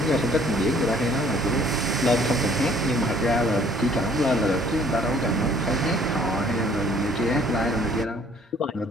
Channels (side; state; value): both; normal; correlation 0.58